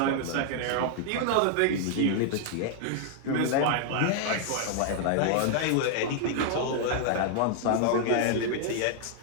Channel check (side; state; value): both; different; correlation -0.01